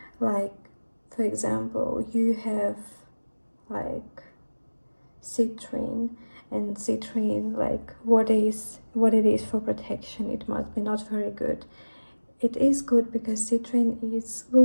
Like, for example, you have like citrine, and citrine, like what it is for protection, it must be not very good. It is good because citrine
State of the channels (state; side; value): inverted; both; correlation -1.00